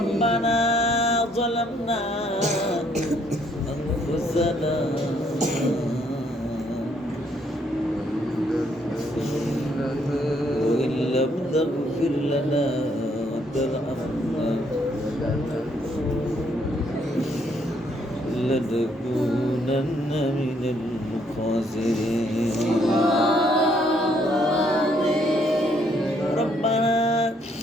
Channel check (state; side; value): normal; both; correlation 0.69